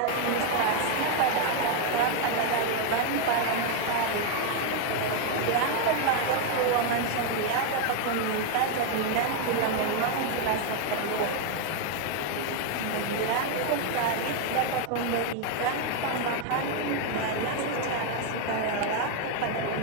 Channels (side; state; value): both; different; correlation 0.01